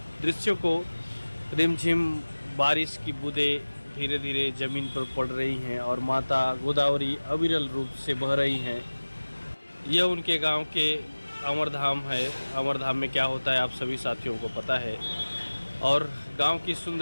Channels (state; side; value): inverted; both; correlation -1.00